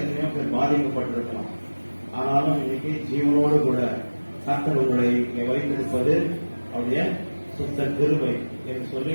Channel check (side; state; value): both; inverted; correlation -1.00